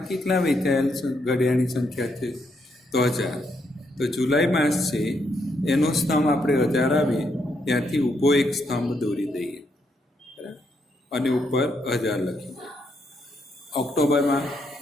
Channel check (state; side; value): normal; both; correlation 0.77